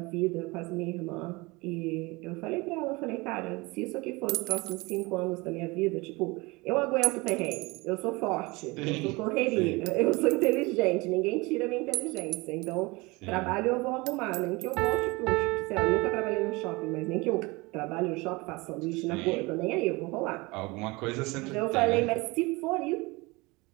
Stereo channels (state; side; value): quieter; left; 24.4 dB